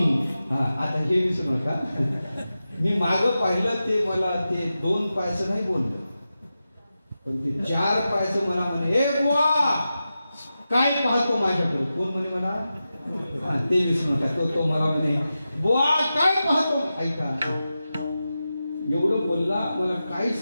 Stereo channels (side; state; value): both; inverted; correlation -0.92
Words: हा आता हे विसरू नका. मी मागं पाहिलं ते मला ते 2 पायचं नाही बोललं पण ते 4 पायचं मला म्हणे हे बुवा काय पाहतो माझ्याकडे? कोण म्हणे मला? ते विसरू नका. तो मला म्हणे बुवा काय पाहतो? ऐका एवढं बोलला मला